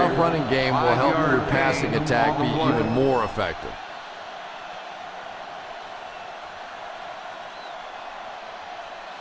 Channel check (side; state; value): both; identical; correlation 1.00